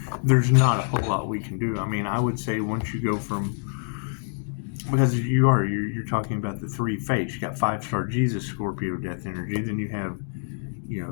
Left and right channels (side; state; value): right; silent; digital silence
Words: There's not a whole lot we can do. I mean, I would say once you go from, because you're talking about the three fates. You got 5-star Jesus, Scorpio death energy. Then you have,